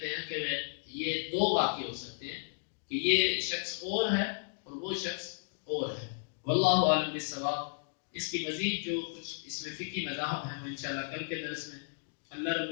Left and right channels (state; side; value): silent; right; digital silence